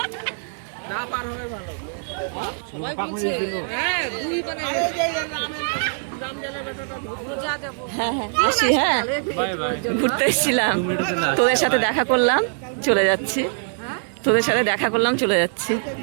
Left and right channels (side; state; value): left; silent; 64 dB below the other